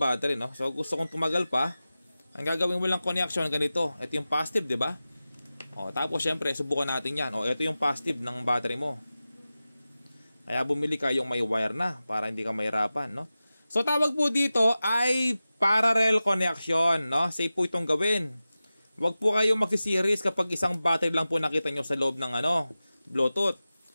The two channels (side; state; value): both; inverted; correlation -0.95